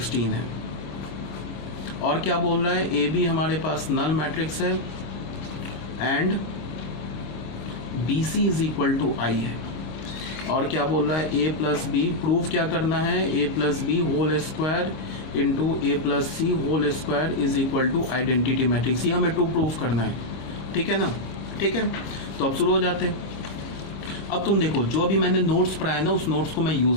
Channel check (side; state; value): right; late; 25 ms